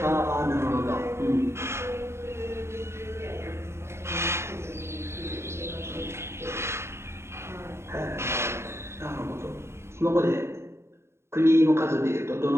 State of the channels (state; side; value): late; left; 0.13 ms